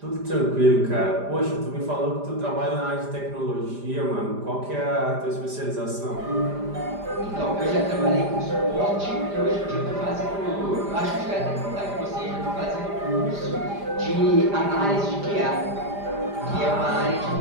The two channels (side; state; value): left; late; 5.0 ms